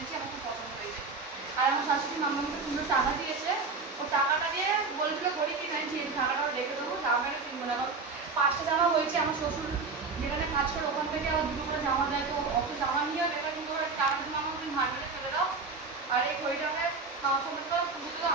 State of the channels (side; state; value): left; quieter; 4.3 dB